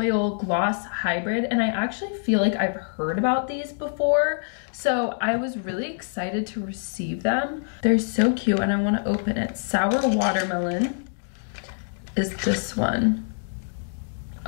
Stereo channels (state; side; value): silent; right; digital silence